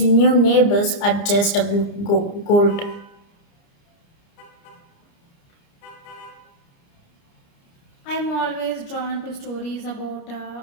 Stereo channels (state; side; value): late; right; 30 ms